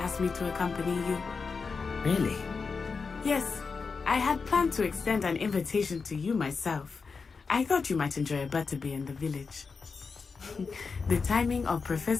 asked me to accompany you. Really? Yes, I had planned to extend an invitation to you myself. I thought you might enjoy a butterbeer in the village. The timing of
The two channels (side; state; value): right; quieter; 4.9 dB